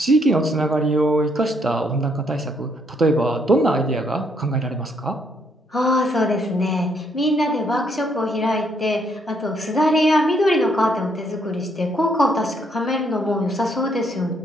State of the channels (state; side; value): normal; both; correlation 0.71